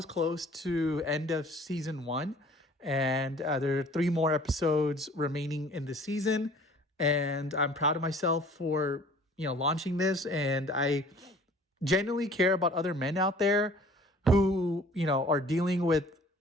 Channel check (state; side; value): normal; both; correlation 0.51